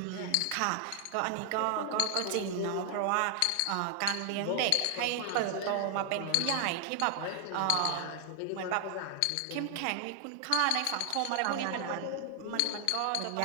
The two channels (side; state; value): both; different; correlation 0.00